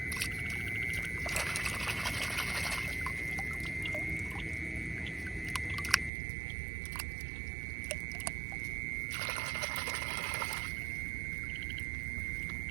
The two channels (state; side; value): drops out; left; at 6.1 s